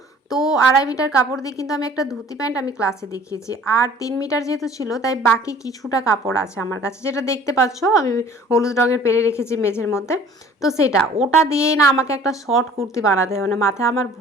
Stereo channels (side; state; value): both; normal; correlation 0.51